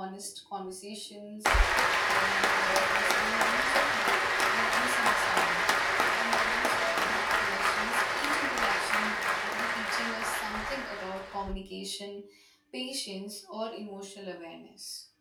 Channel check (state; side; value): identical; both; correlation 1.00